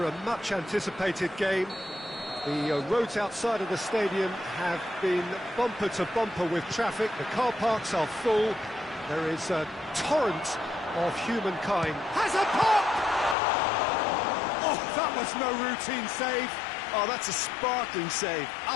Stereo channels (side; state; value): right; drops out; at 13.4 s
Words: a much-anticipated game. The roads outside of the stadium have been bumper to bumper with traffic. The car parks are full. There is a torrent of humankind. Has a pop! Oh, that was no routine save. Oh, that's a sparkling save.